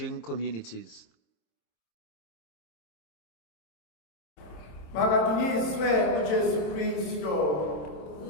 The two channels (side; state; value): right; late; 27 ms